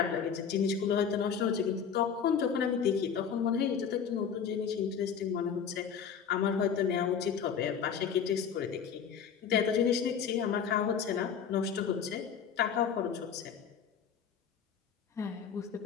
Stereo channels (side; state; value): right; quieter; 7.3 dB